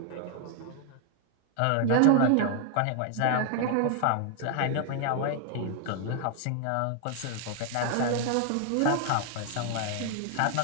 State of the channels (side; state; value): both; different; correlation 0.00